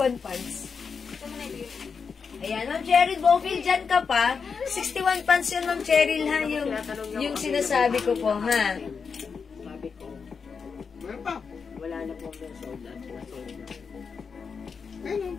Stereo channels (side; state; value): right; quieter; 5.7 dB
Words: pants? Ayan, Ma'am Cheryl Bowfield, dyan ka pa. 61 pants yun, Ma'am Cheryl, ha? Yung sinasabi ko po, ha? Sabi ko, Meron pa. wala na po ang sold out. Ayun,